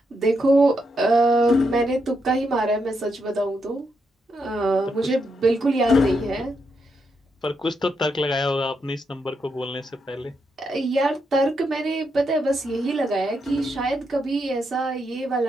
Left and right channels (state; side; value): normal; both; correlation 0.81